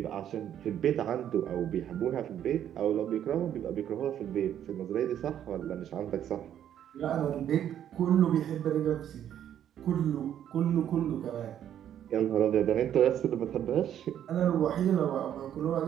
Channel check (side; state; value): left; quieter; 10.3 dB